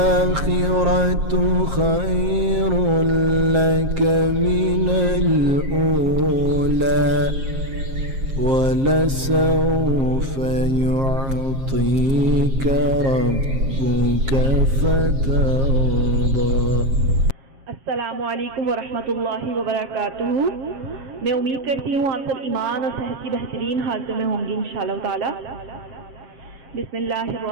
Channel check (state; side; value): late; left; 7.5 ms